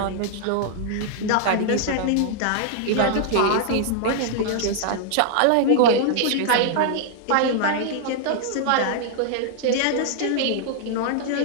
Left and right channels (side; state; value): both; different; correlation -0.01